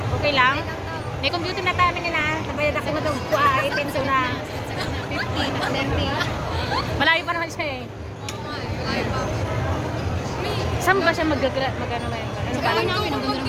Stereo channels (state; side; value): identical; both; correlation 1.00